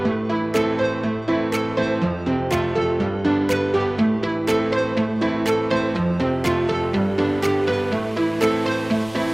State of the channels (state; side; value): noise; left; rumble, 22 dB below the sound